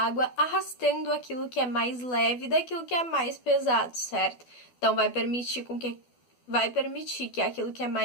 arrastando aquilo que é mais leve daquilo que é mais pesado, certo? Então, vai permitir que aquilo que é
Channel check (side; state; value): right; late; 12 ms